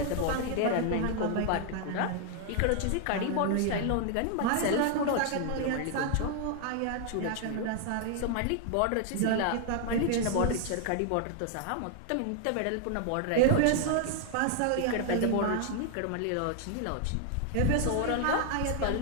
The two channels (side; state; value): both; different; correlation 0.00